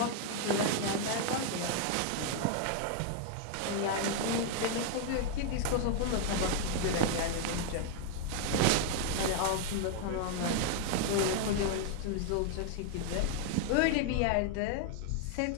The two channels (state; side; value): different; both; correlation 0.00